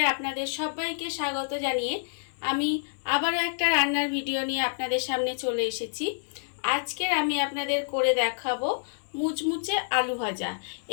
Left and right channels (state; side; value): silent; right; digital silence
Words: আপনাদের সবাইকে স্বাগত জানিয়ে আমি আবারও একটা রান্নার ভিডিও নিয়ে আপনাদের সামনে চলে এসেছি। আজকের আমি আপনাদের করে দেখাবো মুচমুচে আলু ভাজা।